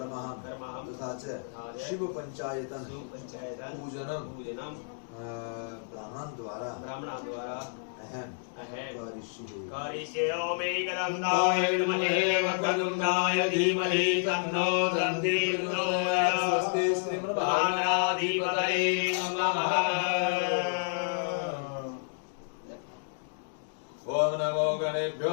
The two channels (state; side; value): silent; right; digital silence